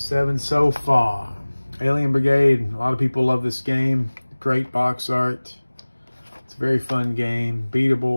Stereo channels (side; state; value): both; inverted; correlation -1.00